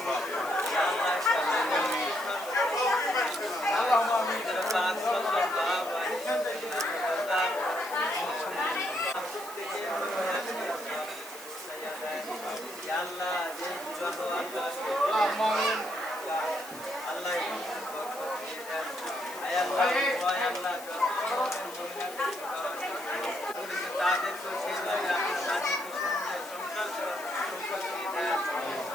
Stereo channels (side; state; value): left; noise; hiss, 15 dB below the sound